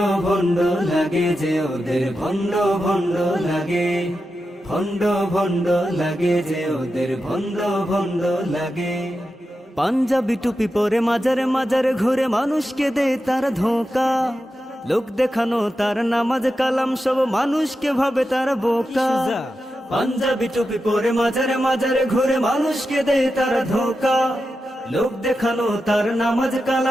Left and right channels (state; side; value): normal; both; correlation 0.90